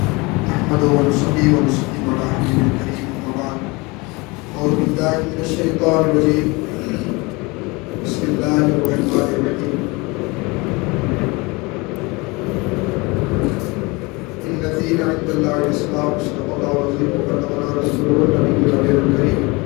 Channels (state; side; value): quieter; right; 25.4 dB